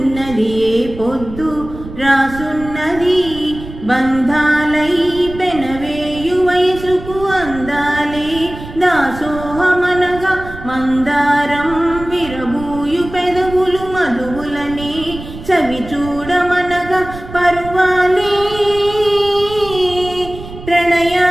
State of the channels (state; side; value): noise; right; rumble, 13 dB below the sound